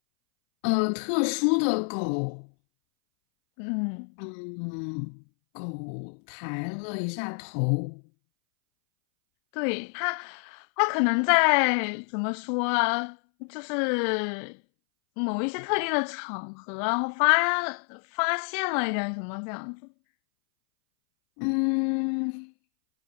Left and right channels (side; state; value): right; silent; 60 dB below the other